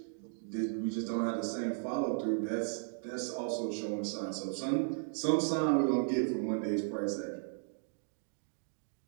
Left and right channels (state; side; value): silent; left; digital silence